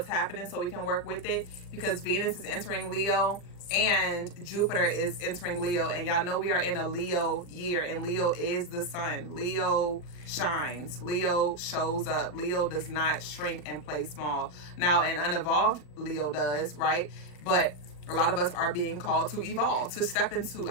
happening, so we can work with it. because Venus is entering Leo and Jupiter is entering Leo. And y'all know we are in a Leo year, and Leo is the sun. Leo shines. Leo shows up. Leo does not shrink and play small. Now, an unevolved Leo does, right? But a lot of us are being called to evolve, to step into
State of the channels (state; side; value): late; right; 40 ms